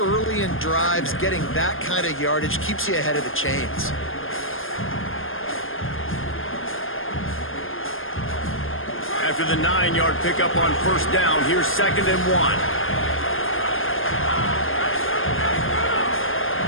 in drives, getting that kind of yardage keeps you ahead of the chains. After the 9-yard pickup on 1st down, here's 2nd and 1.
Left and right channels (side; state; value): right; late; 0.59 ms